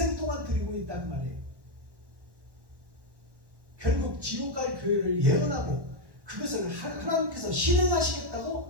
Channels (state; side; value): late; left; 1.1 ms